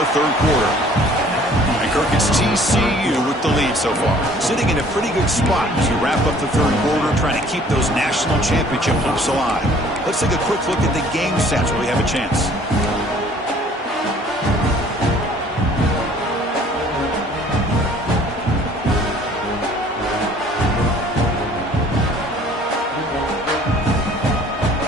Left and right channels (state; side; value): normal; both; correlation 0.54